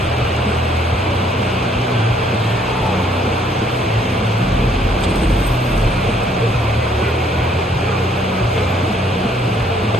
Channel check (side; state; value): both; normal; correlation 0.65